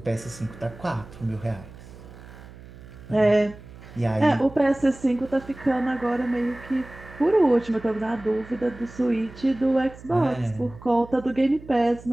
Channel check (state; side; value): noise; right; hum, 18 dB below the sound